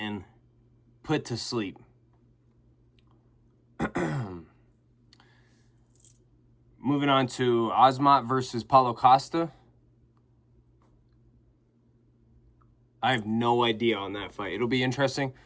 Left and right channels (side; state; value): both; identical; correlation 1.00